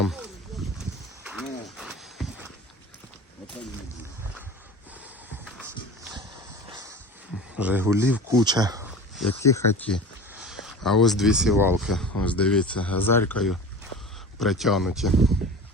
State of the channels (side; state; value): both; normal; correlation 0.36